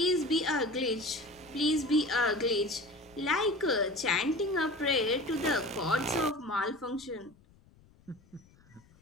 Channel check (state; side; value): noise; left; rumble, 28 dB below the sound